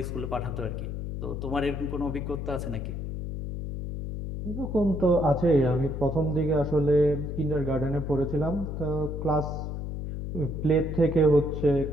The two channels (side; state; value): left; noise; hum, 5 dB below the sound